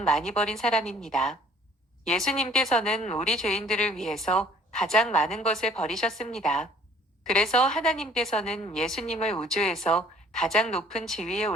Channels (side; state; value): both; normal; correlation 0.56